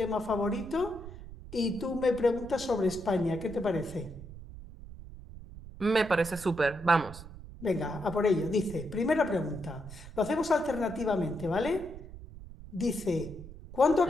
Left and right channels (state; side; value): noise; right; rumble, 14 dB below the sound